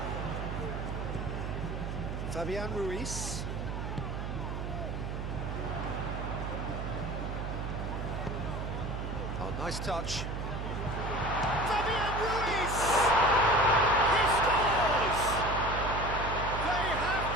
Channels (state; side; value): noise; right; hum, 4 dB below the sound